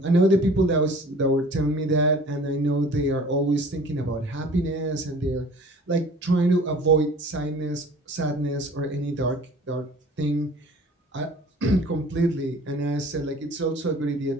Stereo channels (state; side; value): normal; both; correlation 0.47